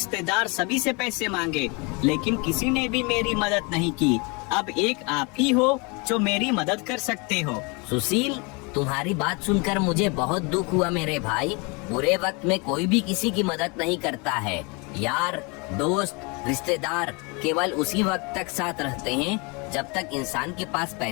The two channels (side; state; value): right; quieter; 30.0 dB